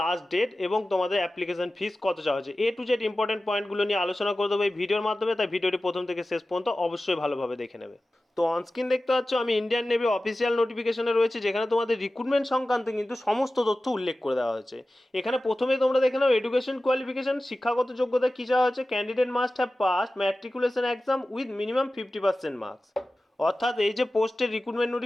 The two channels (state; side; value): normal; both; correlation 0.95